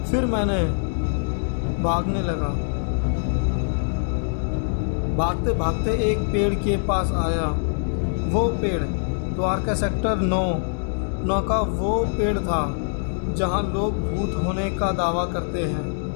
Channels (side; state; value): right; silent; digital silence